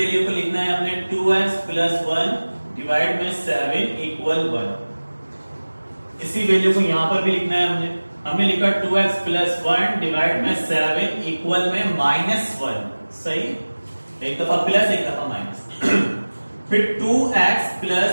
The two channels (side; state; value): both; inverted; correlation -1.00